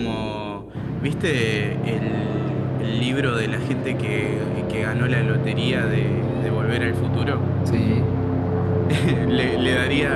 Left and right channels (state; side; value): identical; both; correlation 1.00